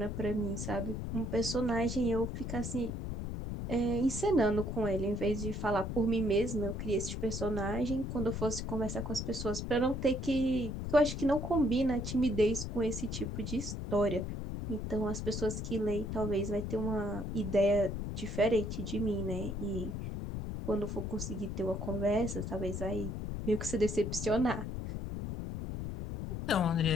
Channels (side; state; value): left; noise; rumble, 4 dB below the sound